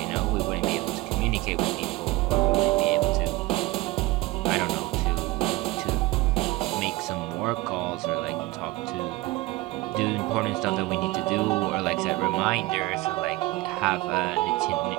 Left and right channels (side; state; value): left; quieter; 20.1 dB